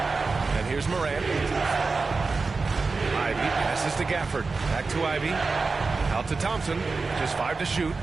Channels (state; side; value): quieter; left; 4.1 dB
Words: here's Morant. Ivy passes to Gafford. Back to Ivy. Out to Thompson. Just 5 to shoot.